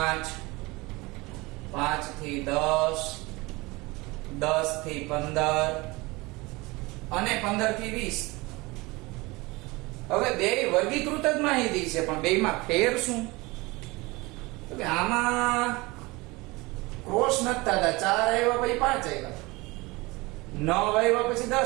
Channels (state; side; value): quieter; left; 23.4 dB